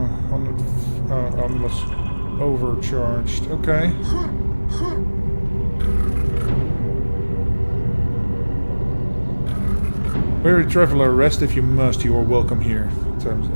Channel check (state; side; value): inverted; both; correlation -1.00